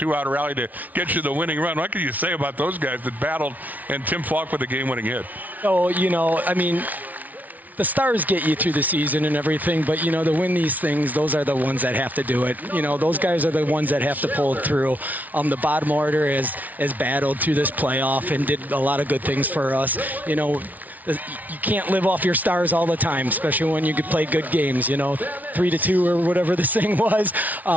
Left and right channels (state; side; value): late; left; 0.076 ms